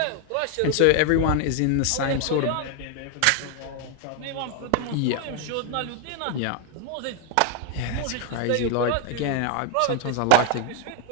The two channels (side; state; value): both; different; correlation 0.01